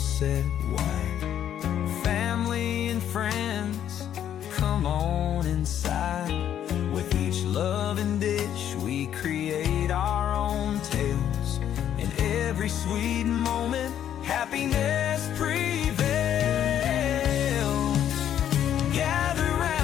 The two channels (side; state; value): right; quieter; 10.2 dB